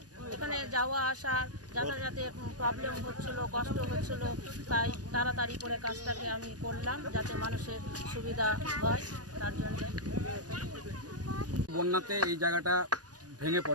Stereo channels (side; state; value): left; late; 0.68 ms